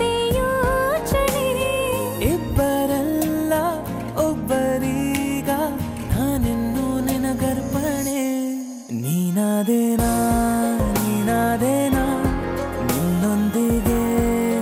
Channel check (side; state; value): both; identical; correlation 1.00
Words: ಯೋಚನೆ. ಇಬ್ಬರಲ್ಲ ಒಬ್ಬರೀಗ ನಾನೆನ್ನು ನಿನಗರ್ಪಣೆ. ನೀನಾದೇನಾ ನೀನಾದೇನಾ ನಿನ್ನೊಂದಿಗೆ